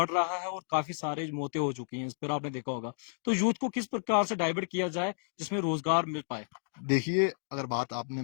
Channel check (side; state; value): right; silent; digital silence